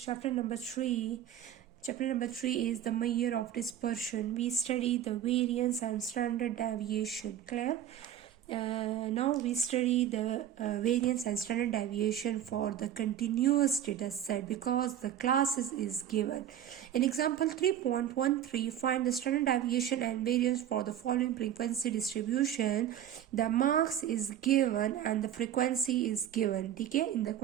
number 3. Chapter number 3 is the measure of dispersion. We study the variance and standard deviation. Clear? Now we study the variance and standard deviation for the continuous data set because the classes is given. In example 3.13, find the standard deviation and variance for the following frequency distribution. The marks is given and the frequency is given. ठीक है, in the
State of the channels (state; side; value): quieter; left; 10.6 dB